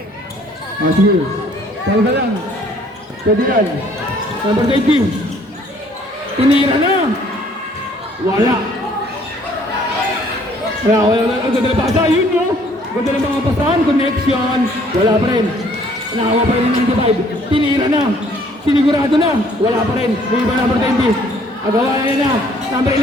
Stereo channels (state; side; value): normal; both; correlation 0.60